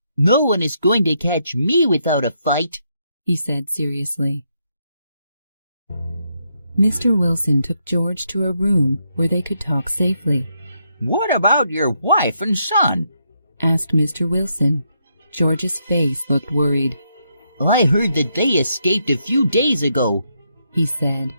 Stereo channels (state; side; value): inverted; both; correlation -0.78